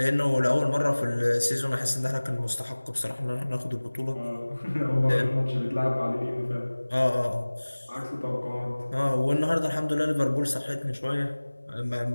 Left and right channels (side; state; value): both; inverted; correlation -1.00